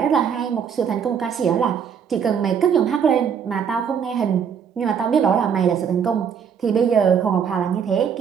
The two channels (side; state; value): left; quieter; 7.4 dB